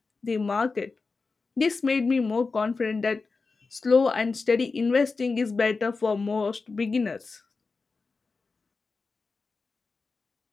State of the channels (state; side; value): quieter; right; 4.2 dB